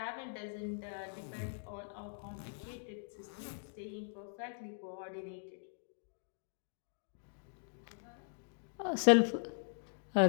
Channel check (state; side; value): silent; right; digital silence